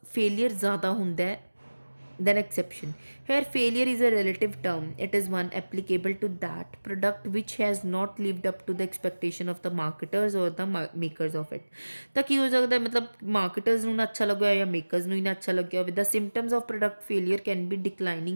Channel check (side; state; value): both; inverted; correlation -1.00